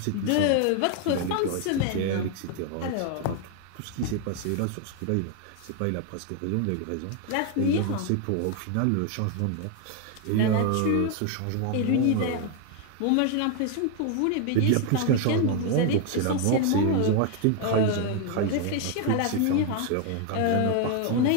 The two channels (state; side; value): different; both; correlation 0.01